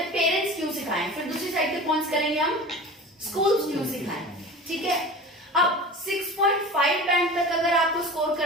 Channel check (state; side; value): normal; both; correlation 0.35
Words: पेरेंट्स क्यों सिखाएं, फिर दूसरी साइड के पॉइंट्स करेंगे हम स्कूल्स क्यों सिखाएं. ठीक है? अब 6.5 बैंड तक अगर आपको स्कोर